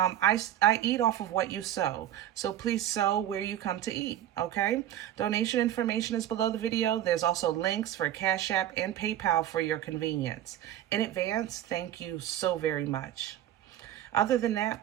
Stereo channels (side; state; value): left; quieter; 11.8 dB